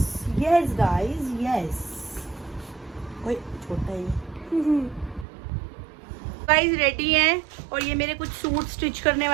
Yes guys, yes. ओए छोटा है। गाइस रेडी हैं और ये मेरे कुछ सूट स्टिच करने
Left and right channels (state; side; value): drops out; left; at 5.2 s